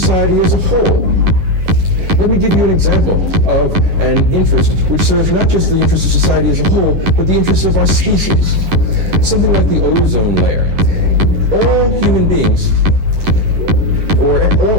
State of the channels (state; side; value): late; left; 11 ms